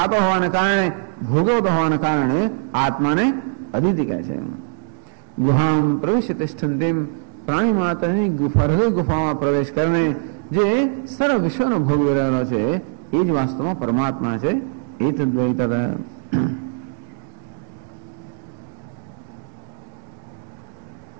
હોવાને કારણે, ભોગવતો હોવાને કારણે આત્માને અદિતિ કહે છે. ગુહામ પ્રવિશ્ય તિષ્ઠંતીમ, પ્રાણી માતાની હૃદય ગુફામાં પ્રવેશ કરીને જે સર્વ વિશ્વનો ભોગવી રહેલો છે એ જ વાસ્તવમાં પરમાત્મા છે. એ તદ્વૈતત.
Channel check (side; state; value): left; silent; digital silence